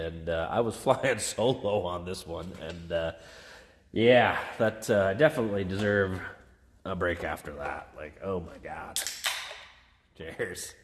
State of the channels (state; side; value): identical; both; correlation 1.00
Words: I was flying solo on this one, and yeah, that I definitely deserve a break after that. Like, oh my God. Cheers.